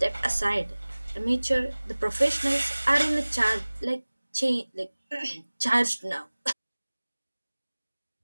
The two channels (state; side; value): inverted; both; correlation -1.00